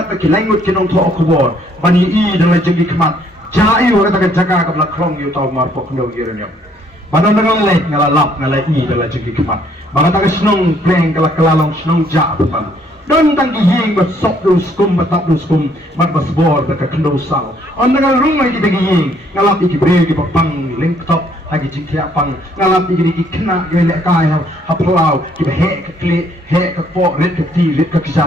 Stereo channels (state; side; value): normal; both; correlation 0.66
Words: ke langut kinong to okubor bani I dalam jenggi kemat jai orang tak jaga ke belak krong yu tau mar pok ndo yiranyam badan dengan lek ngalalap ngalai I dalam jenggi kemat bang tak senong pleng kala kelalong senong ja betam don tanggi ying bat sok du skum batap du skum bat basbor tak kendo sal on dengan rumai di bagi ying ngalap iki bre ki pang link top lagi jingkia pang ngalap iki kena gelek kai haplau ki he ke kli he ke po red ke ti red ke